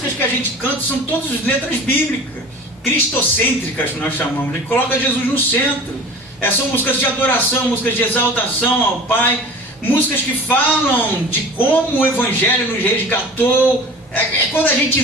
que a gente canta são todas letras bíblicas, cristocêntricas, que nós chamamos. A gente coloca Jesus no centro. São músicas de adoração, músicas de exaltação ao Pai, músicas que falam de como o Evangelho nos resgatou. Quando a gente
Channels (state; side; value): normal; both; correlation 0.40